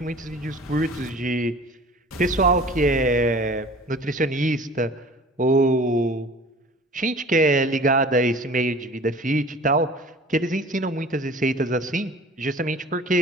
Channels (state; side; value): normal; both; correlation 0.45